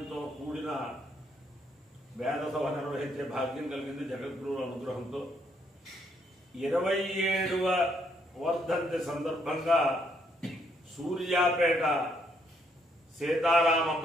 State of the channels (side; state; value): both; normal; correlation 0.72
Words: కూడిన వేద సభ నిర్వహించే భాగ్యం కలిగింది జగద్గురువుల అనుగ్రహంతో. 27వ వర్ధంతి సందర్భంగా సూర్యాపేట సీతారామ